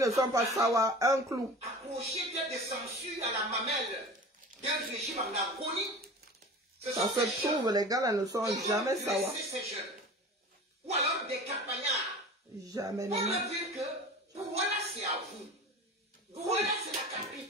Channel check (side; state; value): both; normal; correlation 0.36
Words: ne sont pas sawa, un clou. accrochés tels des censures à la mamelle d'un régime en agonie. Ce Ça sont se des jeunes trouve, les gars là ne sont qui jamais vont sawa. dresser ces jeunes. Ou alors des campagnards. Jamais, On non. va dire que Douala c'est à vous. Douala c'est la